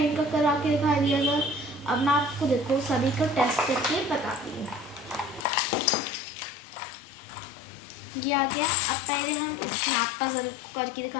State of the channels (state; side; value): drops out; right; at 5.5 s